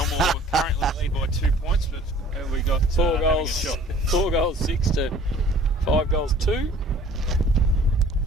currently lead by 2 points, but We got 4 having a goals, shot. 4 goals 6 to 5 goals 2.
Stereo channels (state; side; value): normal; both; correlation 0.51